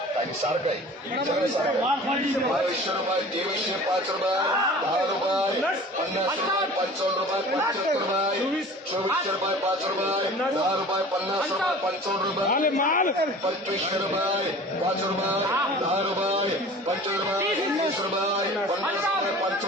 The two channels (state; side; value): normal; both; correlation 0.42